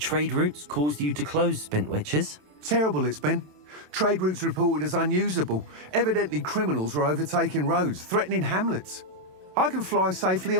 routes caused you to close Spintwitches? Terrible it's been. Trade routes reported as unusable. Evidently criminals are overtaking roads, threatening hamlets. I can fly safely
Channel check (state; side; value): late; left; 27 ms